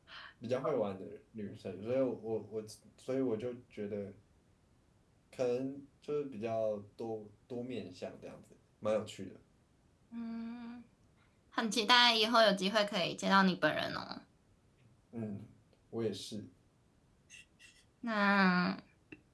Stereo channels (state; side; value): identical; both; correlation 1.00